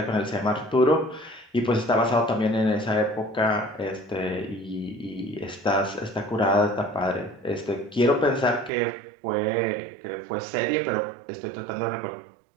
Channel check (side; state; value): left; drops out; at 8.7 s